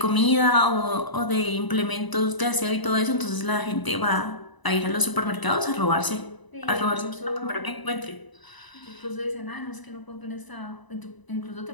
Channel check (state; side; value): late; right; 1.0 ms